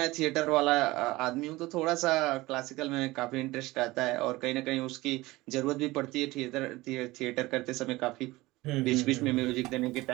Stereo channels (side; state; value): left; quieter; 19.9 dB